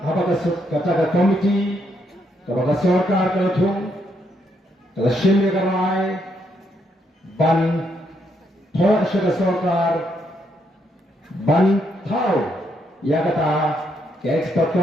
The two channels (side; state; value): both; normal; correlation 0.76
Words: apakah kata komiti, apakah sorkar kelethung, kalau shimmy kerai, ban thor syada sorkar, ban tahu, ya kata ke expert